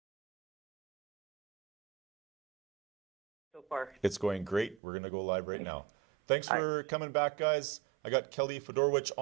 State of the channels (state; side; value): drops out; left; at 4.8 s